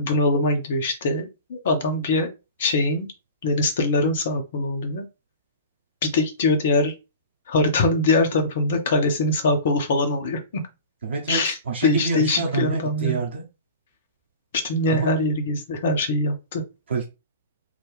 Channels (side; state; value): both; inverted; correlation -0.36